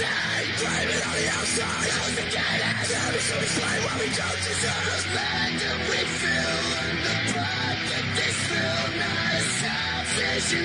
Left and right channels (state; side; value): identical; both; correlation 1.00